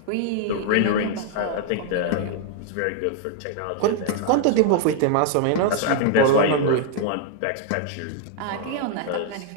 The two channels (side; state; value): both; different; correlation 0.00